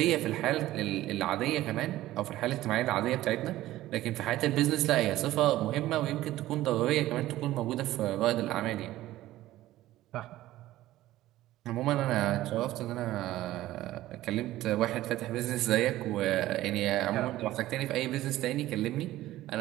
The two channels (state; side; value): quieter; left; 15.4 dB